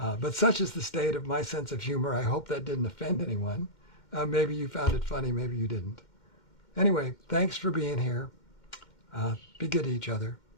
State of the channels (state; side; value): late; right; 2.1 ms